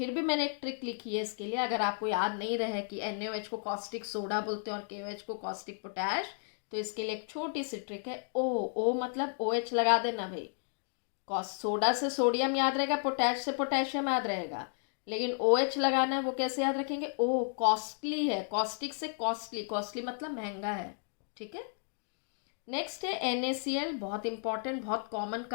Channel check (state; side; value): silent; right; 56 dB below the other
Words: भी मैंने एक ट्रिक लिखी है इसके लिए, अगर आपको याद नहीं रहे कि NaOH को कॉस्टिक सोडा बोलते हैं और KOH को कॉस्टिक पोटैश, तो इसके लिए एक छोटी सी ट्रिक है। ओ मतलब OH लगा देना भाई, सोडा से सोडियम याद रहेगा, पोटैश से पोटेशियम याद रहेगा, लेकिन OH लगाना है, वो कैसे याद रखेंगे? ओ कॉस्टली है, कॉस्टिक से कॉस्टली, कॉस्टली मतलब महंगा है। ठीक है, नेक्स्ट है NaCl, बहुत इंपॉर्टेंट, बहुत कॉमन